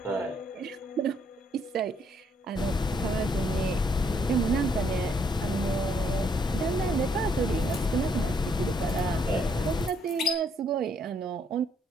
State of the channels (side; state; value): both; normal; correlation 0.69